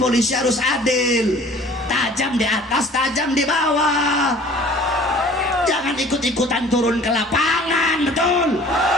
polisi harus adil, tajam di atas, tajam di bawah. Jangan ikut-ikutan turun ke lapangan, betul.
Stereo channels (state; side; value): normal; both; correlation 0.49